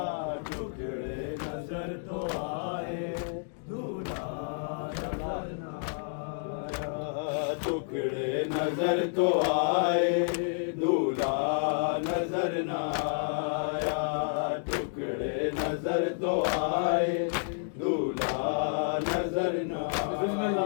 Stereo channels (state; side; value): silent; right; digital silence